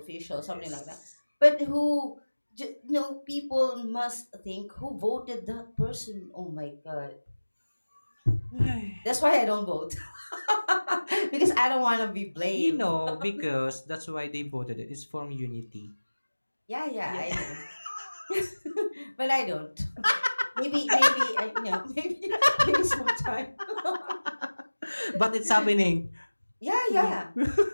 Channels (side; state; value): both; inverted; correlation -1.00